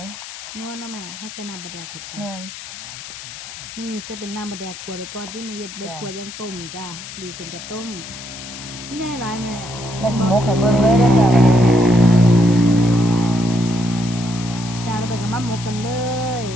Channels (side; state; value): left; noise; hiss, 12 dB below the sound